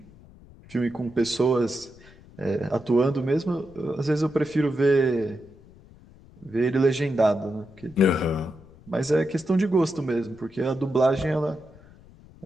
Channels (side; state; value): left; noise; rumble, 23 dB below the sound